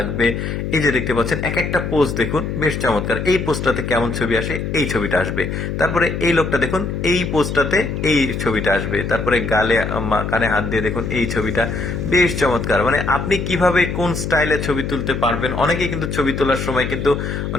এই যে দেখতে পাচ্ছেন, এক একটা পোজ দেখুন, বেশ চমৎকার। এই পোজটাতে কেমন ছবি আসে, এই ছবিটা আসবে। তারপরে এই লোকটা দেখুন, এই পোজটাতে এই ছবিটা আসবে। তারপরে গালে কানে হাত দিয়ে দেখুন, এই ছবিটা বেশ চমৎকার। মানে আপনি কিভাবে কোন স্টাইলে ছবি তুলতে পারবেন। অনেকে কিন্তু ছবি তোলার সময় কিন্তু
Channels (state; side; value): noise; left; hum, 4 dB below the sound